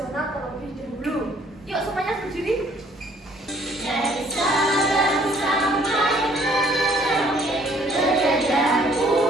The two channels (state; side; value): normal; both; correlation 0.61